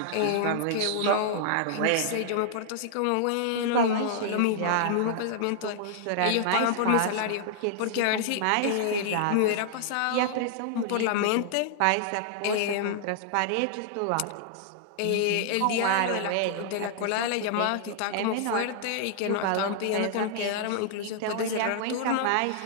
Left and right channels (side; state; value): both; different; correlation -0.01